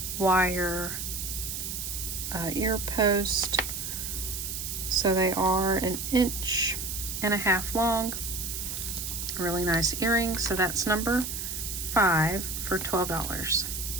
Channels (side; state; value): right; noise; hiss, 5 dB below the sound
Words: wire ear post. So they are 1.5 inches long. Really nice earrings. So that's number 5 for $12.